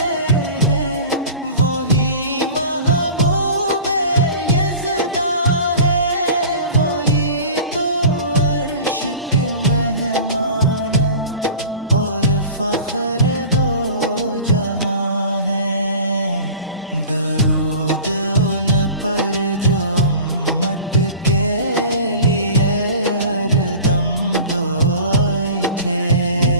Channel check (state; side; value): inverted; both; correlation -0.40